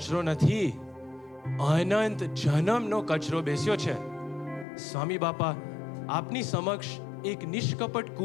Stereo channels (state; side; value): drops out; right; at 4.7 s